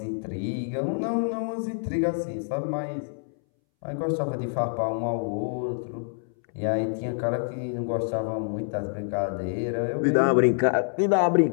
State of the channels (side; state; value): right; silent; 60 dB below the other